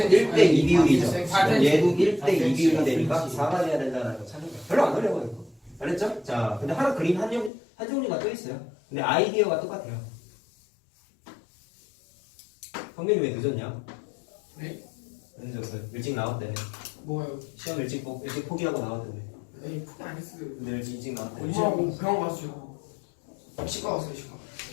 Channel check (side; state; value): right; drops out; at 7.5 s